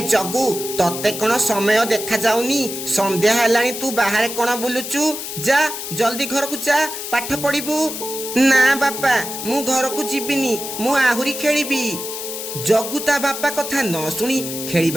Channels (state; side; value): noise; left; hiss, 7 dB below the sound